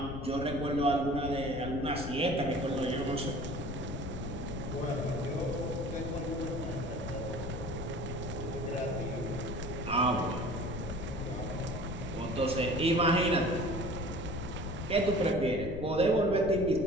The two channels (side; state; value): left; noise; rumble, 6 dB below the sound